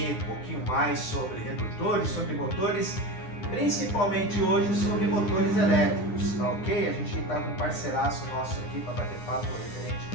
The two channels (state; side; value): late; right; 9.7 ms